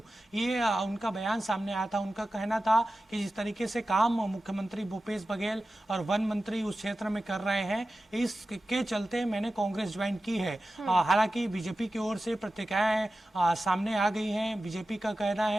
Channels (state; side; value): normal; both; correlation 0.94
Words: ये उनका बयान सामने आया था। उनका कहना था कि जिस तरीके से काम मुख्यमंत्री भूपेश बघेल और वन मंत्री उस क्षेत्र में कर रहे हैं, इसके चलते मैंने कांग्रेस ज्वाइन की है। हालांकि बीजेपी की ओर से प्रतिक्रियाएं सामने आ गई हैं। बीजेपी का कहना